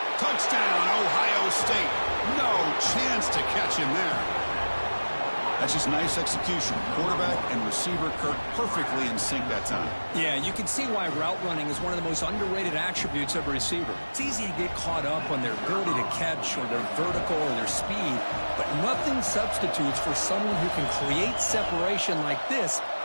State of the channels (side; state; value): both; inverted; correlation -1.00